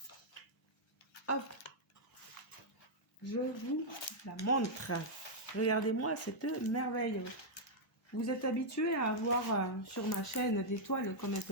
Hop, je vous la montre. Regardez-moi cette merveille. Vous êtes habitués à avoir sur ma chaîne des toiles comme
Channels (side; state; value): both; normal; correlation -0.05